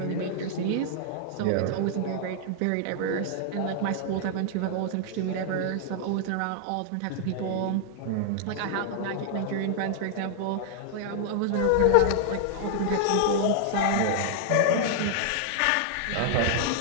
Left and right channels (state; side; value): different; both; correlation -0.01